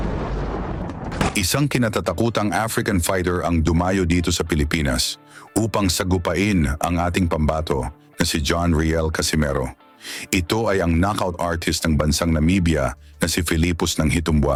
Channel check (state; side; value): identical; both; correlation 1.00